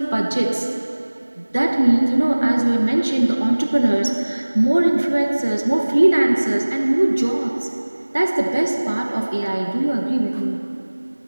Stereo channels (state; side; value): inverted; both; correlation -1.00